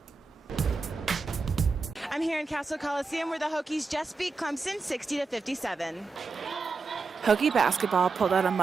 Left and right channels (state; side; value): quieter; left; 4.2 dB